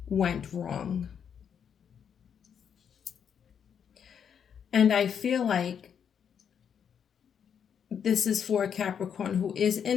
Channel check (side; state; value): right; quieter; 7.8 dB